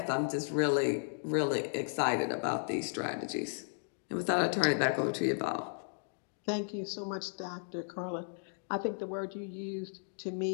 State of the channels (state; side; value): silent; right; digital silence